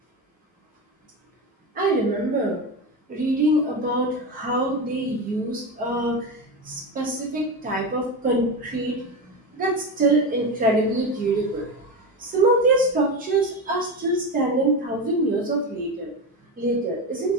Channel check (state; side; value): normal; both; correlation 0.18